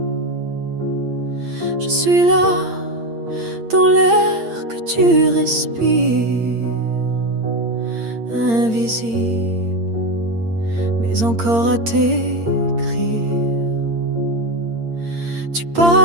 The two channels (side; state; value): left; late; 8.7 ms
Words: Je suis là dans l'air que tu respires, invisible mais encore à t'écrire. Tu